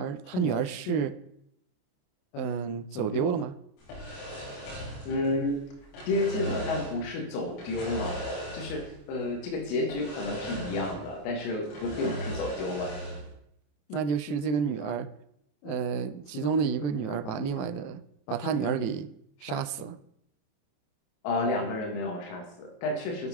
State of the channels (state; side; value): late; right; 27 ms